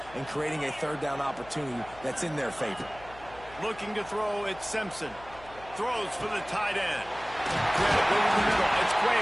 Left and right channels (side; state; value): left; noise; hum, 20 dB below the sound